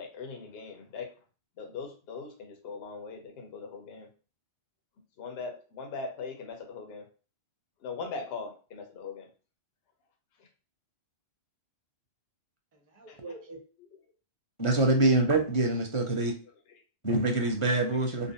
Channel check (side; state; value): right; late; 1.5 ms